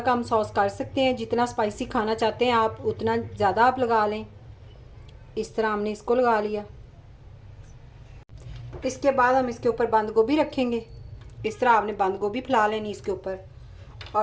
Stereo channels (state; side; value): identical; both; correlation 1.00